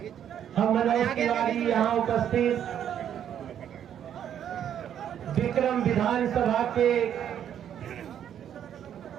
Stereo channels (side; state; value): left; quieter; 9.6 dB